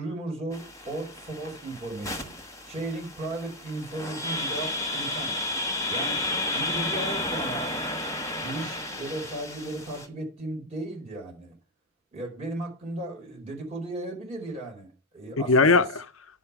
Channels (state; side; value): normal; both; correlation 0.05